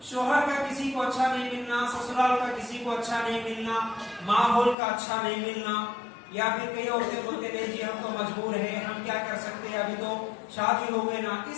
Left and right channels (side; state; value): right; drops out; at 4.8 s